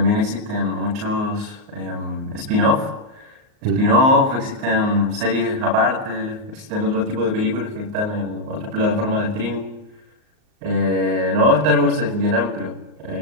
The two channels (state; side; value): late; left; 38 ms